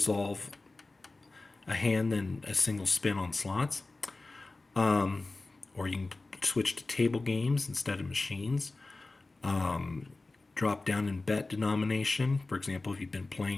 a hand than a single spin on slots. Or you can switch to table games instead of machines. Drop down in bet denomination. For example, if you've been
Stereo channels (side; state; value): right; quieter; 3.3 dB